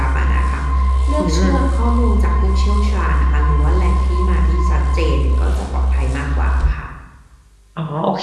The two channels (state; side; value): identical; both; correlation 1.00